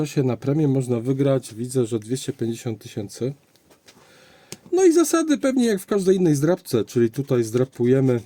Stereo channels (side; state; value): both; identical; correlation 1.00